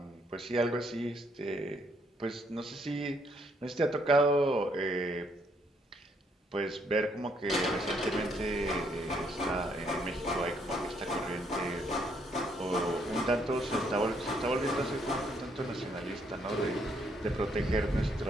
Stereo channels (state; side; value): normal; both; correlation 0.70